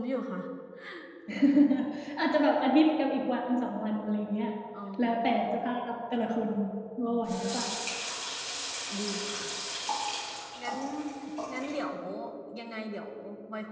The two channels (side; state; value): both; identical; correlation 1.00